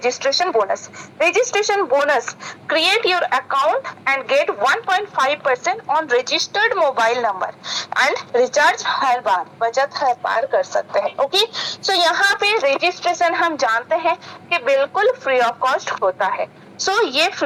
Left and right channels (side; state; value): both; identical; correlation 1.00